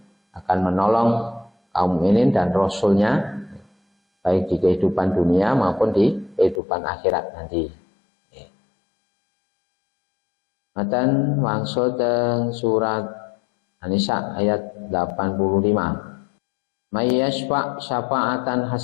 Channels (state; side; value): drops out; right; at 6.6 s